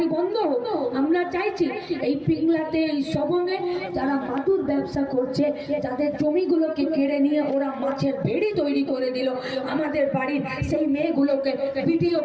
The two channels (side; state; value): both; identical; correlation 1.00